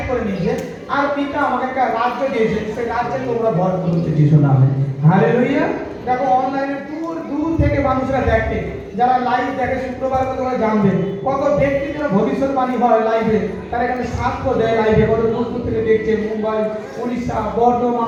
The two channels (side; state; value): both; identical; correlation 1.00